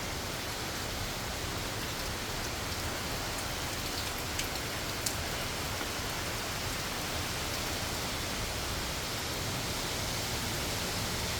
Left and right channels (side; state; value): both; identical; correlation 1.00